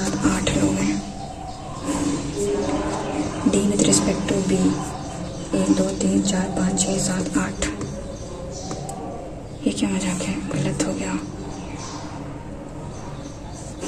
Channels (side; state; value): both; identical; correlation 1.00